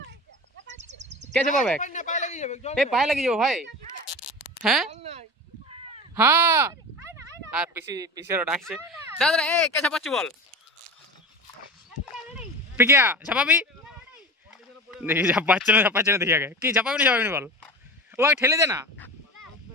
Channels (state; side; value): normal; both; correlation 0.31